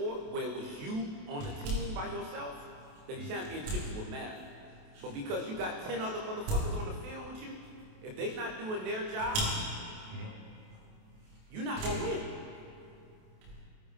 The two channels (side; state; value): left; late; 28 ms